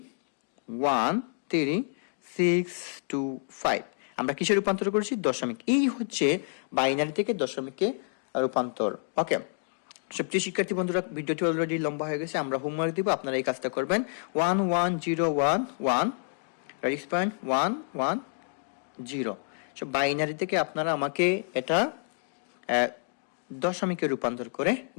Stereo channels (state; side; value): silent; right; digital silence